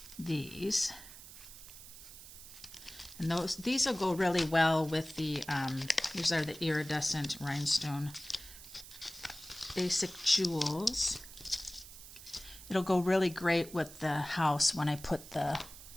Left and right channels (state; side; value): noise; right; hiss, 16 dB below the sound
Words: these. And these will go really well with the, these are the iridescent rhinestone basic jewels. It'll go really great with the house when I put the